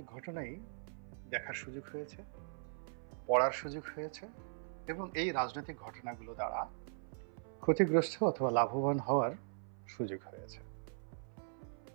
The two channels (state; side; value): silent; left; 51 dB below the other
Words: ঘটনাই দেখার সুযোগ হয়েছে, পড়ার সুযোগ হয়েছে, এবং এই রাজনৈতিক ঘটনাগুলো দ্বারা ক্ষতিগ্রস্ত অথবা লাভবান হওয়ার সুযোগ হয়েছে।